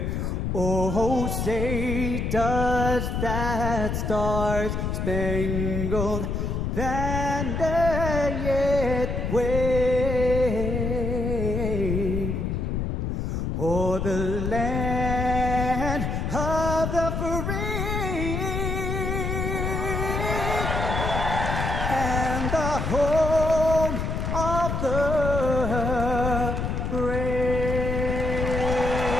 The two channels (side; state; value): left; noise; rumble, 1 dB below the sound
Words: Oh, say does that star-spangled banner yet wave o'er the land of the free and the home of the brave.